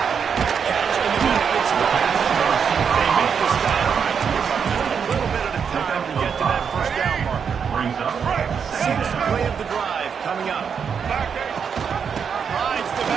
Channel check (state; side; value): quieter; left; 6.8 dB